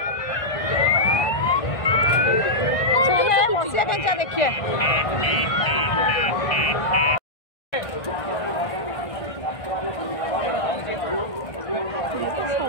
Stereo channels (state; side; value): late; right; 1.6 ms